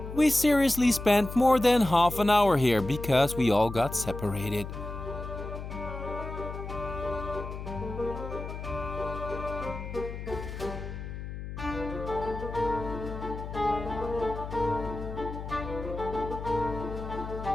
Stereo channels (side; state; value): left; noise; hum, 8 dB below the sound